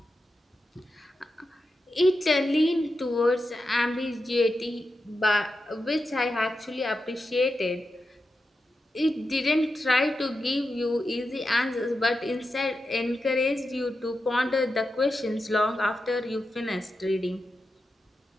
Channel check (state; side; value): normal; both; correlation 0.89